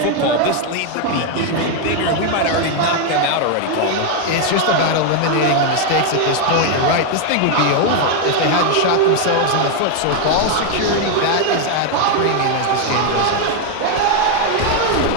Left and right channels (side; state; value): both; different; correlation 0.01